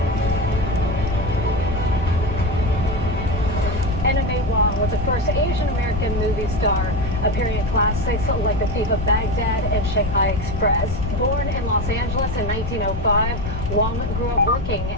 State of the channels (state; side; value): noise; left; rumble, 5 dB below the sound